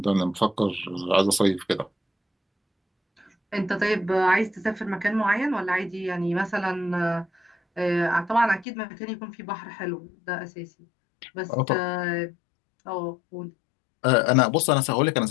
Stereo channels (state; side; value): drops out; right; at 8.7 s